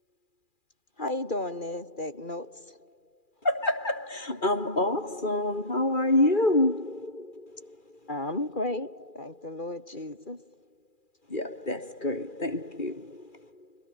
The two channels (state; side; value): late; right; 2.4 ms